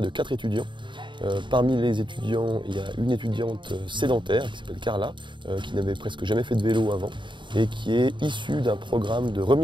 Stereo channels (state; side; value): late; left; 0.23 ms